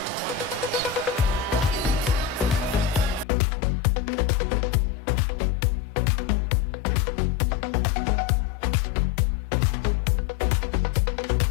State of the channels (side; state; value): right; drops out; at 3.2 s